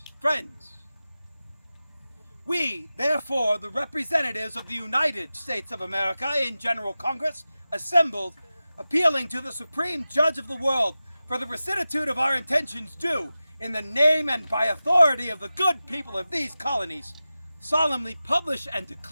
friends. We, therefore, the representatives of the United States of America in General Congress, assembled, appealing to the Supreme Judge of the world for the rectitude of our intentions due, in the name and by authority of the good people of these colonies, solemnly publish and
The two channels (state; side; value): inverted; both; correlation -0.95